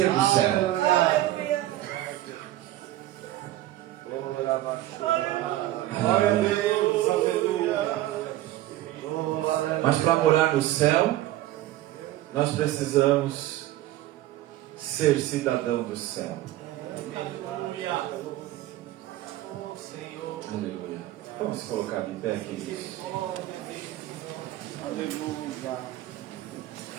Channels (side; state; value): left; quieter; 15.0 dB